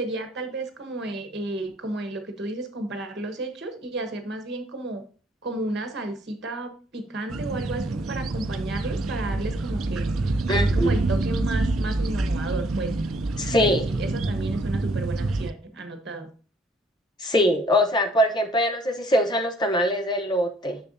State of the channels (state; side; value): normal; both; correlation 0.63